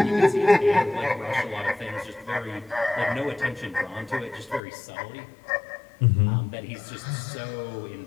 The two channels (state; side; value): drops out; right; at 4.6 s